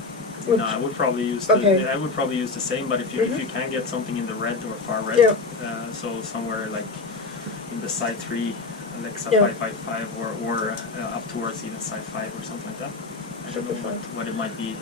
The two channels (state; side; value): quieter; right; 3.8 dB